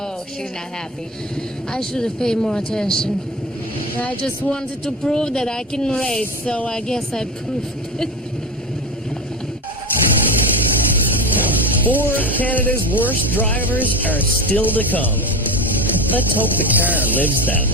she's not happy. I should have paid more attention. I just wanted to prove that I can race, so I guess I proved it. 4 of Canada's worst drivers are still to come. Let's hope the car lives that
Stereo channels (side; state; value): both; normal; correlation 0.24